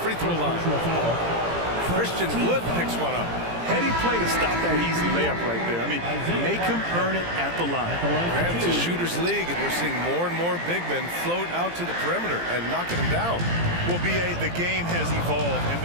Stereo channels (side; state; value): left; late; 17 ms